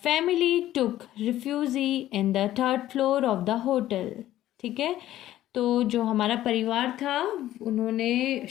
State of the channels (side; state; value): right; quieter; 13.7 dB